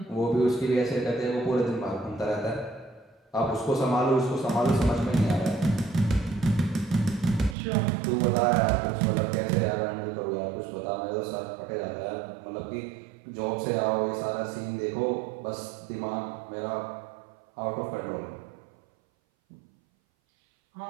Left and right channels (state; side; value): drops out; left; at 7.6 s